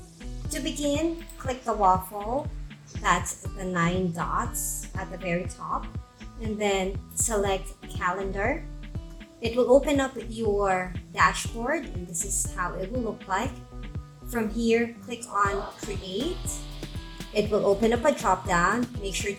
To begin, click the waffle, that's the 9 dots at the very top, and then select Calendar. It will open up your dashboard and this is how it will look like. From here, click on Create. It will open up a drop-down. Make sure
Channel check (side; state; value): both; identical; correlation 1.00